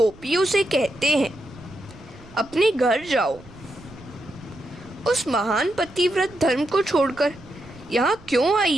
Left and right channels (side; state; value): right; noise; rumble, 22 dB below the sound